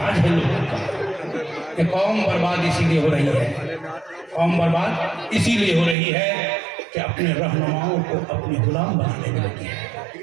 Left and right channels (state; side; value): drops out; left; at 6.0 s